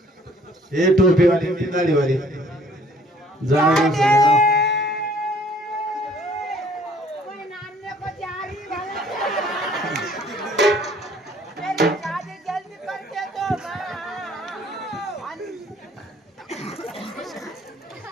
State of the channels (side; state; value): both; normal; correlation 0.58